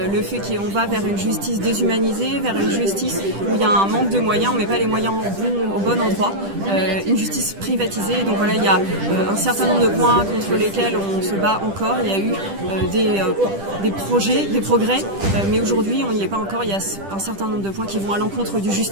Le fait qu'on va vers une justice déshumanisée, vers une justice où il y a un manque de moyens, on ne met pas les moyens au bon endroit, une justice privatisée. Donc voilà, il y a un certain nombre de points contre lesquels on se bat encore. Il y a eu des projets, des progrès, mais aujourd'hui on n'y est pas encore. Il y a un certain nombre de points qui vont à l'encontre du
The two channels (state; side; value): late; left; 10 ms